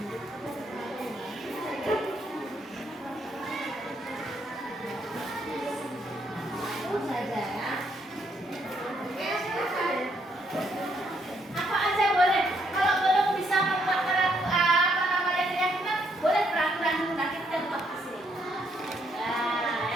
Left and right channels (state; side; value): normal; both; correlation 0.72